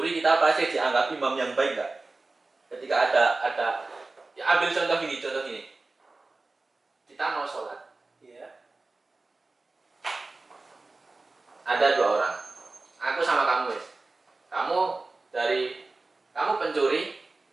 kita pasti dianggap imam yang baik nggak? Ketika ada ya ambil contoh gini, kita mau sholat, Iya. ada 2 orang, aku sama kamu wes, kamu pencuri,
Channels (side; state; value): left; quieter; 3.4 dB